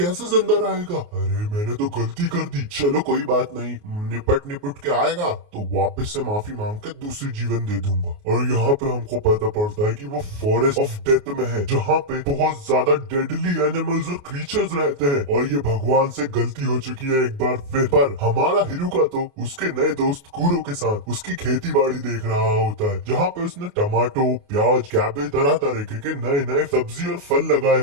जिंदा रहेगा, अरे मैंने तो गलती कर दी, चलो कोई बात नहीं, निपट निपट के आएगा तो वापस से माफी मांग के दूसरी जीवन दे दूंगा। और यहाँ पे हमको पता पड़ता है कि वो फॉरेस्ट ऑफ डेथ में है, जहाँ पे बहुत ज्यादा डेडली एनिमल्स और क्रीचर्स रहते हैं, और ये भगवान से गलती हो चुकी है एक बार फिर। पर हमारा हिरुका तो उसके नए दोस्त कूरो के साथ उसकी खेती बाड़ी देख रहा होता है, जहाँ पे उसने टमाटो, प्याज, कैबेज, तरह तरह के नए नए सब्जी और फल लगाए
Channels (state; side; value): late; left; 28 ms